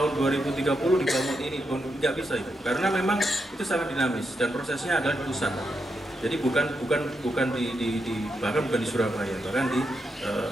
2030 dibangun ini, nggak bisa itu, karena memang itu sangat dinamis dan prosesnya adalah di pusat. Jadi bukan bahkan bukan di Surabaya, bahkan di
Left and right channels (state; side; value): normal; both; correlation 0.83